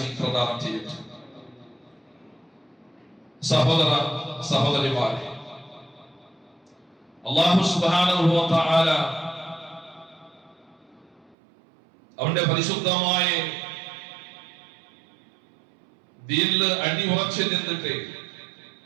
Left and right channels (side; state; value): left; drops out; at 11.4 s